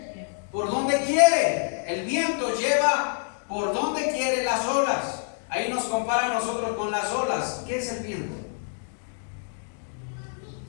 quiere. El viento lleva por donde quiere las olas. Ahí nos compara a nosotros con las olas. ¿Qué es el viento?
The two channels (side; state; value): right; silent; digital silence